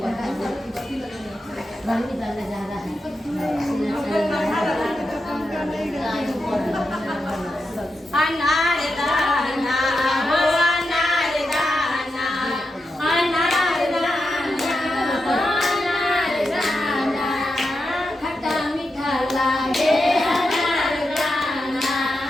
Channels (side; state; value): both; normal; correlation 0.88